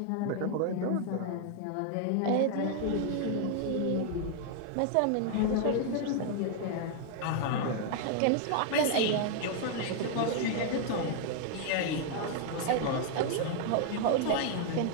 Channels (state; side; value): different; both; correlation 0.00